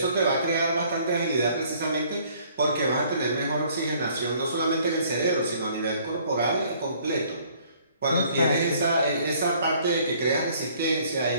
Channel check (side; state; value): both; inverted; correlation -0.60